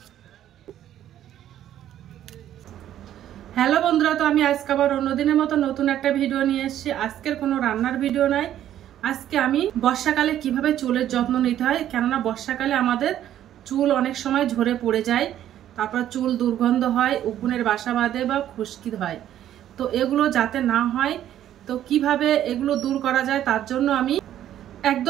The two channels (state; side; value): quieter; left; 11.5 dB